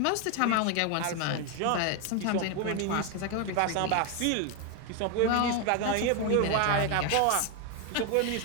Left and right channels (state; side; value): different; both; correlation 0.01